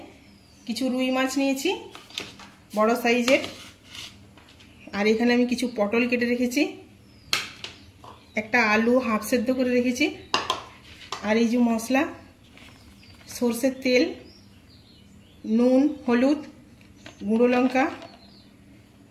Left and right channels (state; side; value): identical; both; correlation 1.00